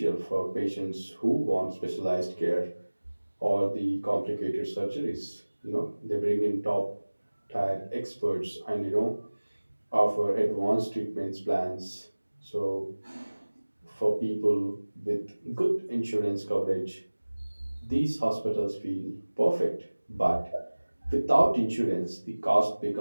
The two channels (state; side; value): inverted; both; correlation -1.00